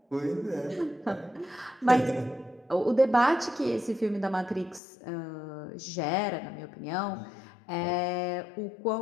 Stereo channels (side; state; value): right; drops out; at 4.8 s